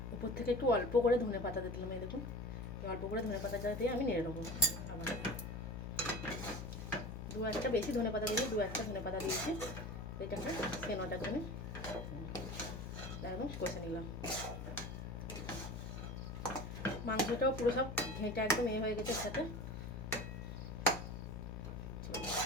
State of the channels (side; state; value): both; normal; correlation 0.35